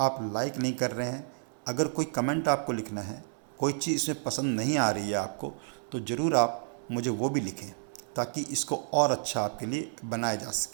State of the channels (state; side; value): silent; left; 57 dB below the other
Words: लाइक नहीं कर रहे हैं, अगर कोई कमेंट आपको लिखना है, कोई चीज़ इसमें पसंद नहीं आ रही है आपको, तो ज़रूर आप मुझे वो भी लिखें ताकि इसको और अच्छा आपके लिए बनाया जा